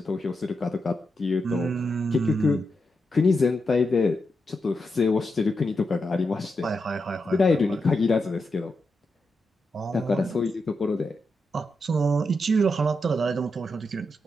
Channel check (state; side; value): normal; both; correlation 0.86